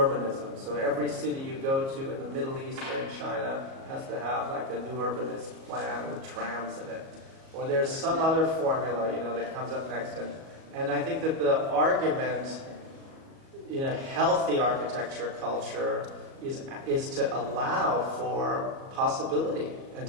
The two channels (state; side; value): late; left; 37 ms